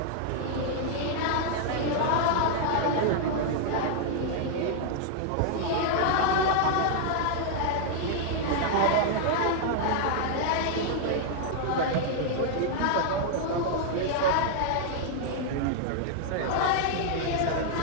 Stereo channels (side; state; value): both; different; correlation -0.01